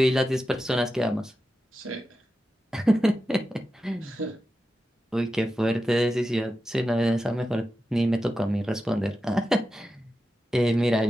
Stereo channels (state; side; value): normal; both; correlation 0.91